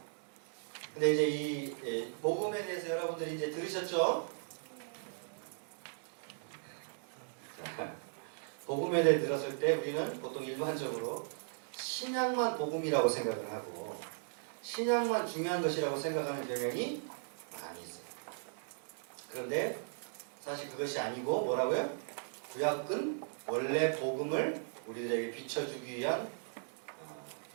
근데 이제 이 복음에 대해서 여러분들이 이제 들으셨죠? 자, 복음에 대해 들었을 때 우리는 보통 일반적으로 신약만 복음이라고 생각을 하고 신약만 중요한 것이라고 생각하는 경향이 많이 있어요. 그런데 사실 그것이 아니고 뭐라고요? 구약은 원래 복음을 우리들에게 비춰주기 위한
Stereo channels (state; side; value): silent; left; 53 dB below the other